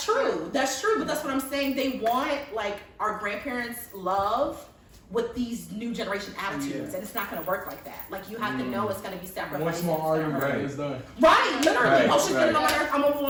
true, but that's what I'm saying. They want like our grandparents' love with these new generation attitudes, and it's not going to work like that. Like you have to know it's going to be sacrificed. One small argument is done. Right, literally. Oh, she's getting on my nerves. I'm gonna move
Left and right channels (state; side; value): identical; both; correlation 1.00